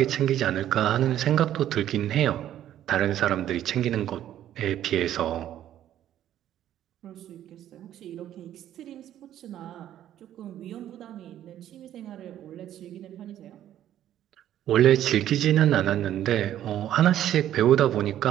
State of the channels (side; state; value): left; quieter; 11.7 dB